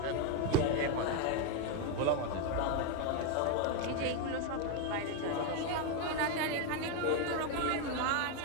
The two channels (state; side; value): different; both; correlation 0.01